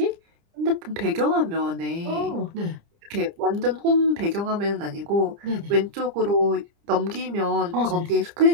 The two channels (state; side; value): late; left; 30 ms